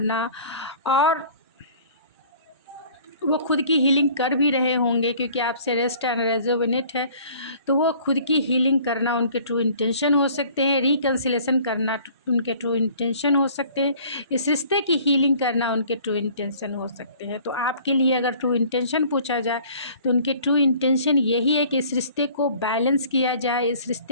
और वो खुद की हीलिंग कर भी रहे होंगे, क्योंकि आपसे रेस्ट एंड रेजोनेट है। तो वो खुद की हीलिंग करना उनके ट्रू इंटेंशन हो सकते हैं, रिकन्सिलेशन करना उनके ट्रू इंटेंशन हो सकते हैं, इस रिश्ते की हीलिंग करना उनके ट्रू इंटेंशन हो सकते हैं। तो आपके लिए अगर ट्रू इंटेंशन पूछा जाए तो उनके ट्रू इंटेंशन यही है कि इस रिश्ते को बैलेंस किया जाए, इस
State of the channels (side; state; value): both; inverted; correlation -0.51